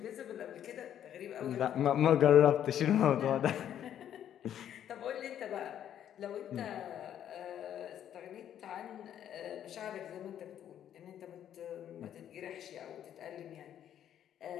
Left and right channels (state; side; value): quieter; right; 10.3 dB